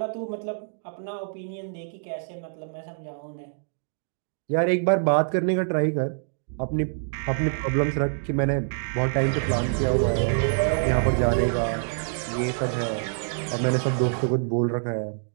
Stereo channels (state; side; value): silent; left; digital silence